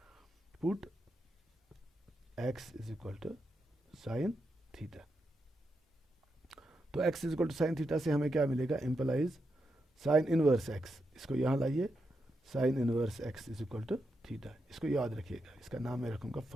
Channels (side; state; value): both; normal; correlation 0.84